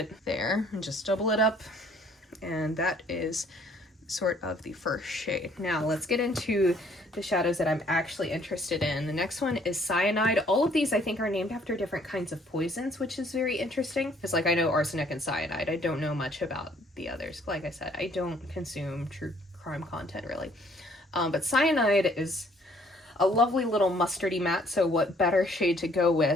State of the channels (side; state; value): both; normal; correlation 0.61